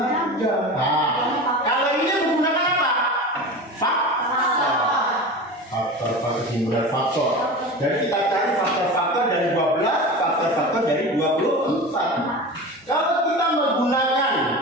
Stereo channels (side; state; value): both; normal; correlation 0.30